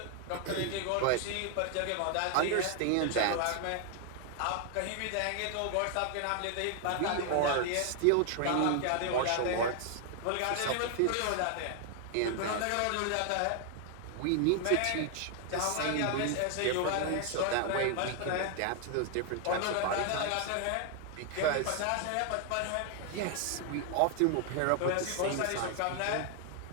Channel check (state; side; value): different; both; correlation 0.00